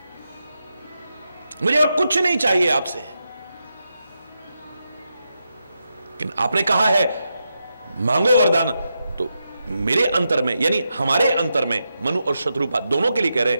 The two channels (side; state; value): both; inverted; correlation -0.86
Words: और कुछ नहीं चाहिए आपसे। लेकिन आपने कहा है मांगो वरदान, तो मेरे अंतर में, यानी हमारे अंतर में, मनु और शत्रुपा दोनों के लिए कह रहे